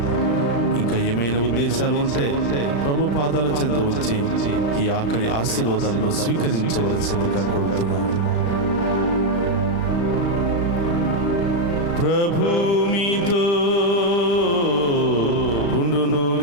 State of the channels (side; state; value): right; late; 35 ms